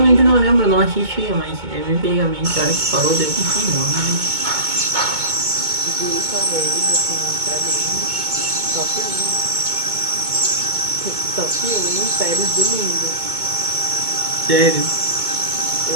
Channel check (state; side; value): late; left; 2.2 ms